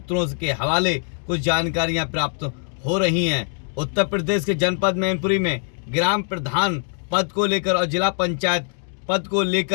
के हवाले कुछ जानकारियां प्राप्त हो रही हैं। उत्तर प्रदेश के जनपद मैनपुरी में ग्राम प्रधान पद को लेकर और जिला पंचायत पद को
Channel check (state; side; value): silent; right; 58 dB below the other